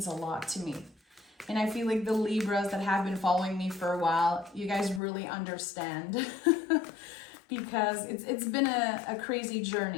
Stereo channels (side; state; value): right; drops out; at 5.0 s